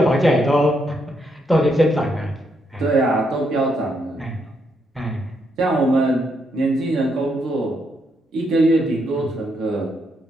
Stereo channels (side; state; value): both; normal; correlation 0.77